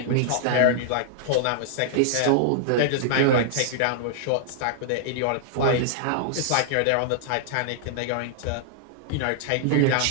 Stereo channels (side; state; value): both; different; correlation -0.01